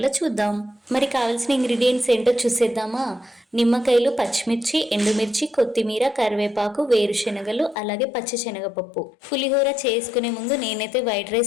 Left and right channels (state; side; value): drops out; right; at 7.8 s